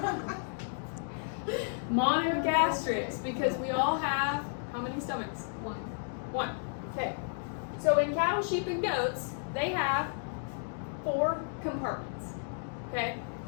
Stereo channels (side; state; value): right; silent; digital silence